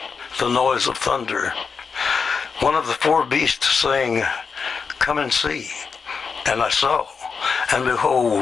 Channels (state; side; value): quieter; right; 5.5 dB